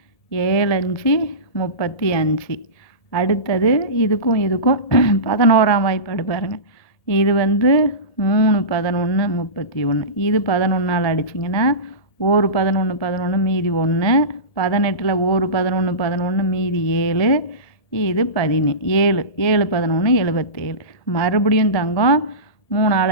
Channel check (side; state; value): right; late; 1.7 ms